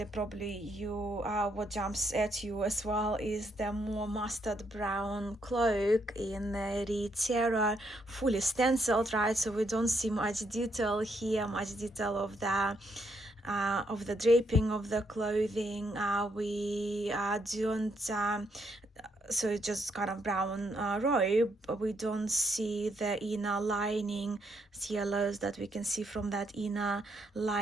probably what jumps at you as well is the more mustard brown cloak in the Terror, fully stenciled, right? So we don't see much detail here, much detail of the draping of the clothing. We don't. So it's just kind of brown robe, but we don't see the inner lining, yellows that we can see from that inner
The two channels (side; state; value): both; normal; correlation 0.75